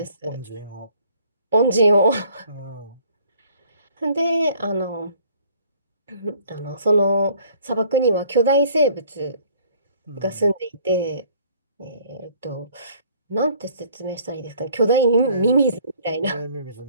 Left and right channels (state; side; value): inverted; both; correlation -0.56